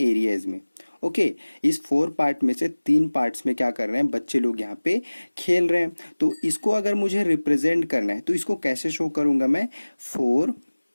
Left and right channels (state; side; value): inverted; both; correlation -1.00